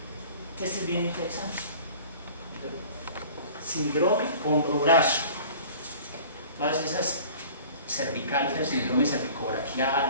Este es bien interesante. Síndrome hombro-brazo. Todas esas cervicales, el síndrome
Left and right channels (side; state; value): both; inverted; correlation -0.45